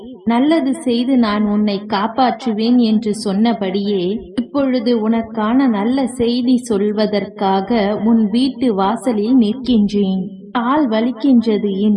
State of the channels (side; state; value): both; identical; correlation 1.00